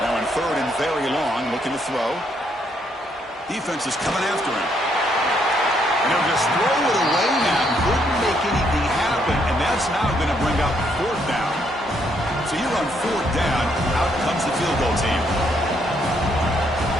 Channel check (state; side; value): normal; both; correlation 0.72